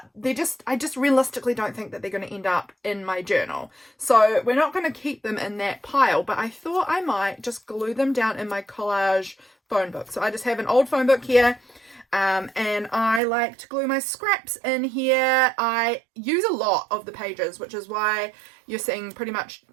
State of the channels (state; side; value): drops out; left; at 13.2 s